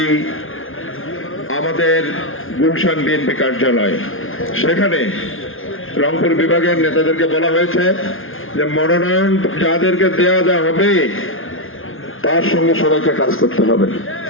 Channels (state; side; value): late; right; 0.59 ms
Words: আমাদের গুলশান বিএনপি কার্যালয়। সেখানে রংপুর বিভাগের নেতাদেরকে বলা হয়েছে যে মনোনয়ন যাদেরকে দেওয়া হবে তার সঙ্গে সবাইকে কাজ করতে হবে।